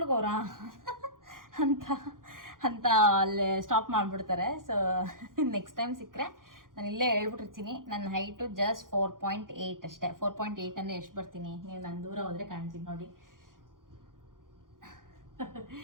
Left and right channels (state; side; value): late; left; 0.90 ms